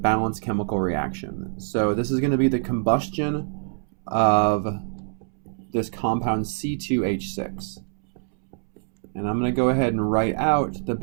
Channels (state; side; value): silent; left; 62 dB below the other